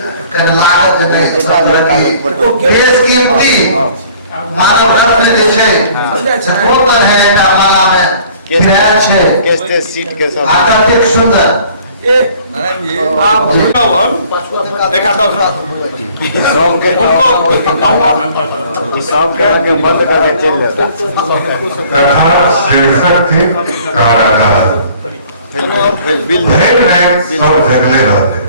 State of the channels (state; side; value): inverted; both; correlation -0.54